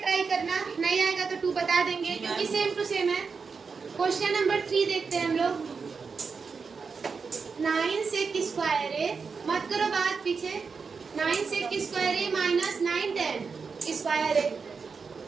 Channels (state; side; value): quieter; left; 5.2 dB